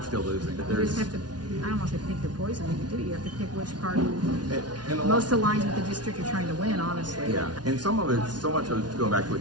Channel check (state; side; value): late; left; 0.69 ms